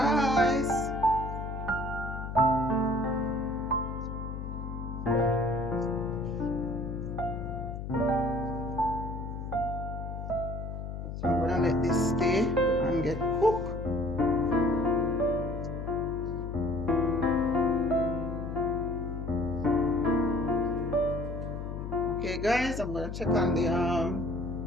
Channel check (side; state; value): left; noise; hum, 6 dB below the sound